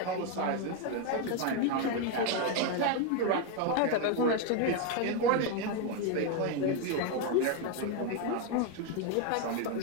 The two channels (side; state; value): both; different; correlation 0.01